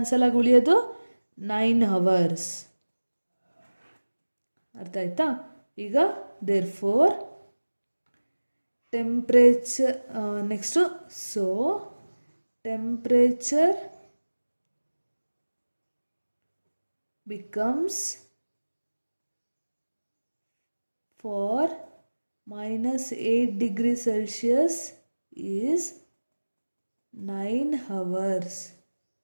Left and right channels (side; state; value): both; inverted; correlation -1.00